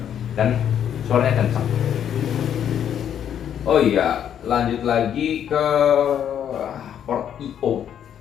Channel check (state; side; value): quieter; right; 9.4 dB